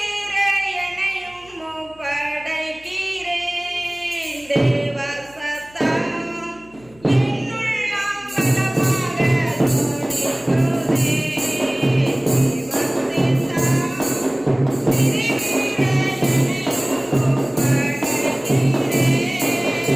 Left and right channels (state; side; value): noise; left; hum, 27 dB below the sound